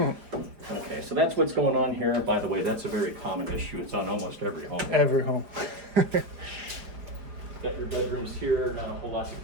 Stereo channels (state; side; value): late; left; 4.9 ms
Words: Okay, so that's what's going on here. By the way, that's a very common issue. It's on almost every home. Every home. Got your bedrooms here, not a whole lot to